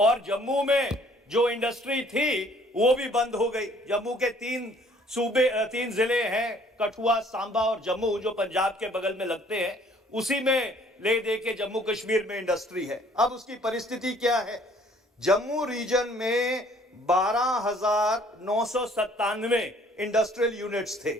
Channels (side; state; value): both; normal; correlation 0.58